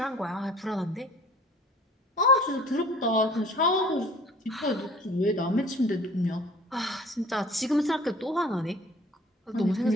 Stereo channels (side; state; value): both; normal; correlation 0.49